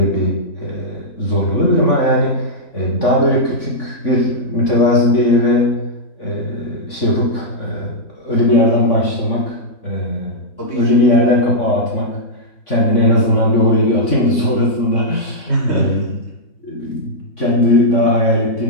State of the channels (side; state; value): right; late; 3.5 ms